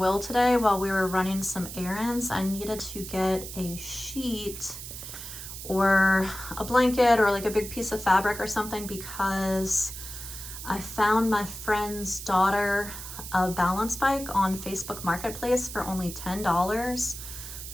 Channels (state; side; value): noise; right; hiss, 10 dB below the sound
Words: today while we were running some errands. I needed to get a sheet or a blanket or like a big piece of fabric or something, because I found my friend's daughter a balance bike on Facebook Marketplace for only $10